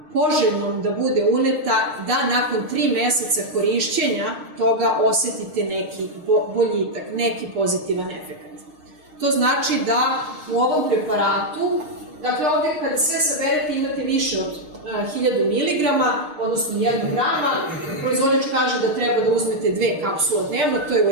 poželjnom da bude uneta, da nakon 3 meseca korišćenja toga osetite neki boljitak, neki pozitivan efekt. To znači da u ovom preparatu, dakle ovdje kada sve saberete imate više od 1000 mg, odnosno 1 grama, proizvođač kaže da treba da uzmete 2 kapsule dnevno, to je u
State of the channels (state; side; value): late; left; 6.6 ms